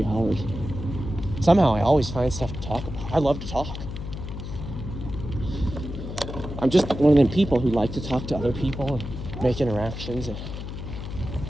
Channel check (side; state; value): left; noise; hum, 8 dB below the sound